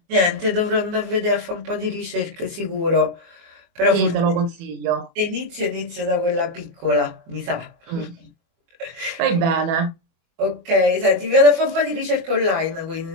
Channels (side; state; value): left; late; 24 ms